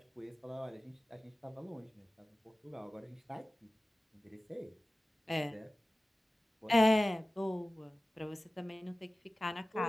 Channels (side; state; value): both; normal; correlation 0.96